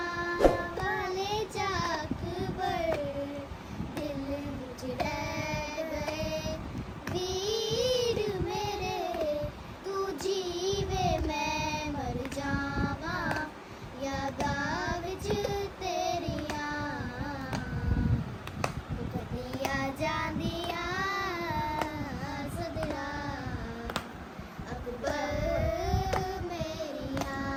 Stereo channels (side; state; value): both; identical; correlation 1.00